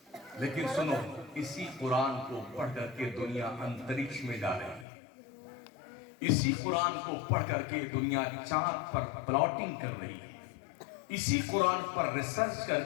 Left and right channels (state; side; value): drops out; right; at 4.9 s